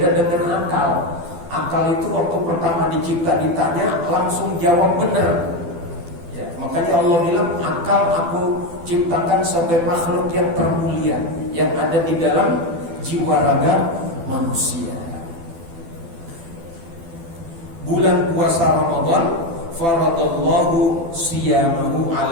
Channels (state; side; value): late; left; 12 ms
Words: dengan akal. Akal itu waktu pertama dicipta ditanya langsung jawab benar. Ya, makanya Allah bilang akal aku ciptakan sebagai makhluk yang termulia, yang ada di dalam jiwa raga manusia. Bulan puasa Ramadan, faradallahu siyamahu